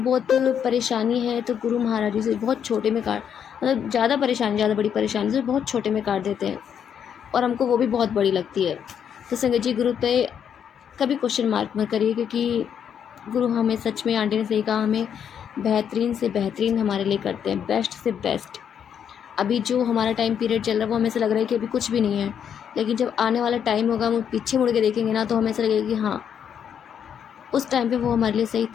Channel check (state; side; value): quieter; right; 8.3 dB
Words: परेशानी है तो गुरु महाराज जी से बहुत छोटे में काट, मतलब ज़्यादा बड़ी परेशानी से बहुत छोटे में काट देते हैं, और हमको वो भी बहुत बड़ी लगती है। तो संगत जी, गुरु पे कभी क्वेश्चन मार्क मत करिए, क्योंकि गुरु हमें सच में, आंटी ने सही कहा, हमें बेहतरीन से बेहतरीन हमारे लिए करते हैं, बेस्ट से बेस्ट। अभी जो हमारा टाइम पीरियड चल रहा है वो हमें ऐसा लग रहा है कि अभी कुछ भी नहीं है, लेकिन जब आने वाला टाइम होगा, हम पीछे मुड़ के देखेंगे ना, तो हमें ऐसा लगेगा कि हाँ, उस टाइम पे वो हमारे लिए सही